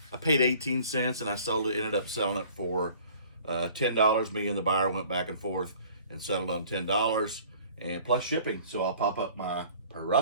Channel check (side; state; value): both; inverted; correlation -0.51